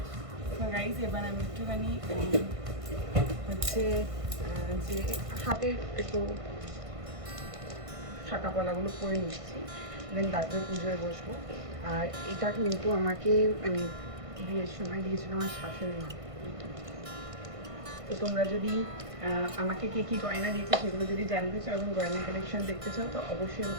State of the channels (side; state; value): left; late; 1.5 ms